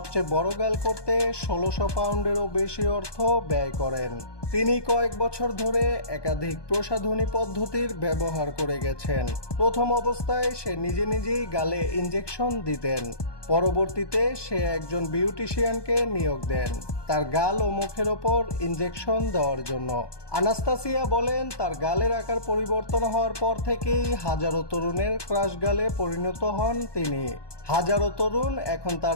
বড় গাল করতে 1600 পাউন্ডেরও বেশি অর্থ ব্যয় করেন। তিনি কয়েক বছর ধরে একাধিক প্রসাধনী পদ্ধতির ব্যবহার করে গেছেন। প্রথম অবস্থায় সে নিজেই গালে ইনজেকশন দিতেন। পরবর্তীতে সে একজন বিউটিশিয়ানকে নিয়োগ দেন তার গাল ও মুখের ওপর ইনজেকশন দেওয়ার জন্য। আনাস্তাসিয়া বলেন, তার গালের আকার পরিবর্তন হওয়ার পর থেকেই হাজারো তরুণের ক্রাশ গালে পরিণত হন তিনি। হাজারো তরুণ এখন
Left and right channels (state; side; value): late; right; 1.2 ms